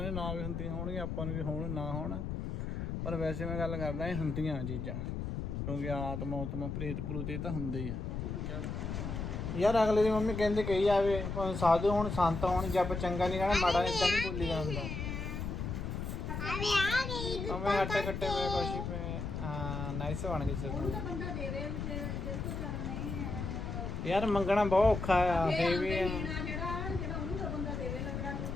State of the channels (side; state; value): left; noise; rumble, 4 dB below the sound